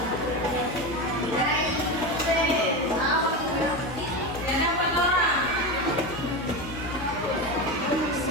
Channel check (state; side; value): noise; left; hum, 12 dB below the sound